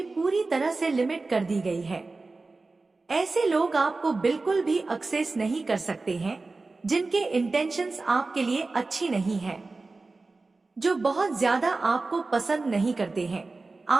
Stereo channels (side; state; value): left; quieter; 3.6 dB